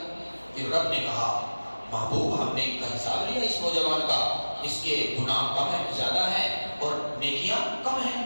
پھر رب نے کہا محبوب ہم نے ان کا حساب لیا اس نوجوان کا، اس کے گناہ کم ہے زیادہ ہیں اور نیکیاں کم ہیں۔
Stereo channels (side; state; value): both; inverted; correlation -1.00